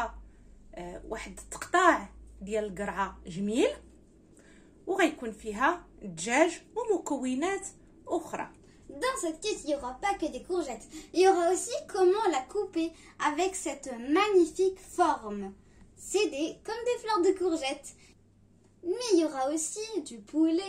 واحد التقطاع ديال القرعة جميل، وغيكون فيها دجاج ومكونات أخرى. Dans cette quiche, il n'y aura pas que des courgettes. Il y aura aussi comment la couper avec cette magnifique forme. C'est comme des fleurs de courgettes. Mais il y aura aussi du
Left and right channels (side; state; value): both; identical; correlation 1.00